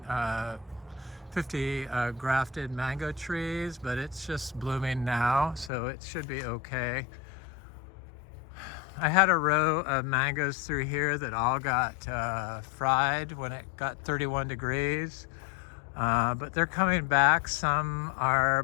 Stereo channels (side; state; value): right; drops out; at 5.7 s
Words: grafted mango trees, but it's just blooming now, so it should be okay. I had a row of mangoes through here that all got fried when it got 31 degrees. But they're coming back. Some are